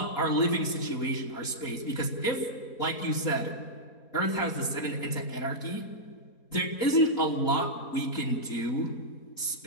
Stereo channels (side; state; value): right; late; 4.2 ms